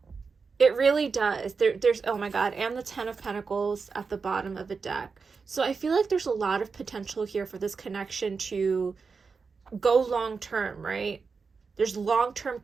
It It really does. There's, oh my God, and the Ten of Pentacles at the bottom of the deck. So I feel like there's a lot of potential here for this connection to go long term, right? There's long term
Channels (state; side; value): quieter; left; 5.0 dB